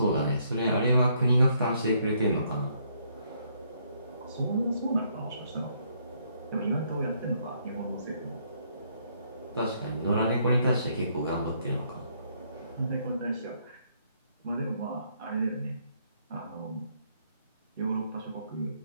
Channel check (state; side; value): inverted; both; correlation -0.70